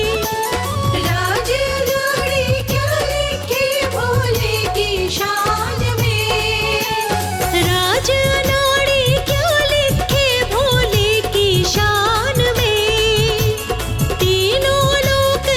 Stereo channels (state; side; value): identical; both; correlation 1.00